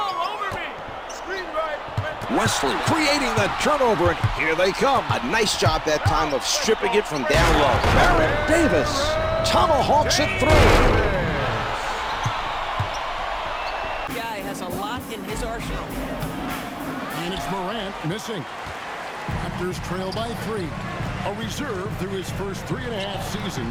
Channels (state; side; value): identical; both; correlation 1.00